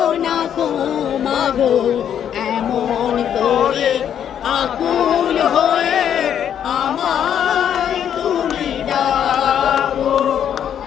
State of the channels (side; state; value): right; quieter; 9.2 dB